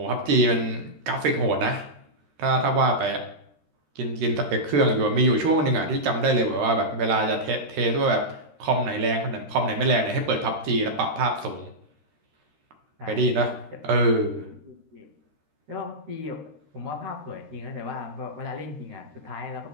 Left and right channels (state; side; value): late; left; 13 ms